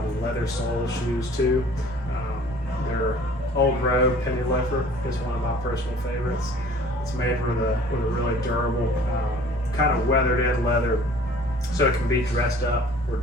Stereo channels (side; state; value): both; normal; correlation 0.50